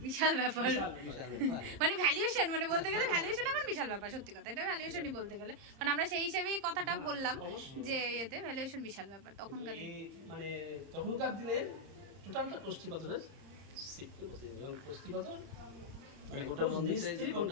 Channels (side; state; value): left; late; 30 ms